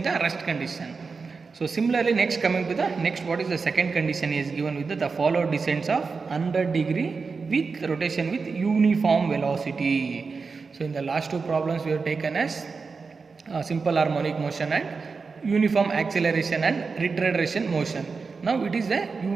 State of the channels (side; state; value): left; quieter; 4.7 dB